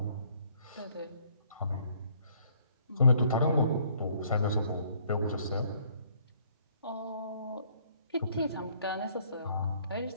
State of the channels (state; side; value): inverted; both; correlation -0.63